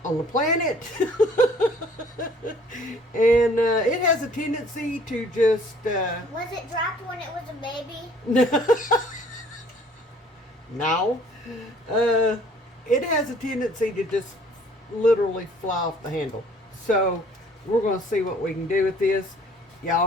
on the planet. And it has a tendency to just... Was it dropped when it was a baby? No. It has a tendency to just literally fly off the handle. So we're going to see what we can do with this. Y'all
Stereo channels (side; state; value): both; normal; correlation 0.56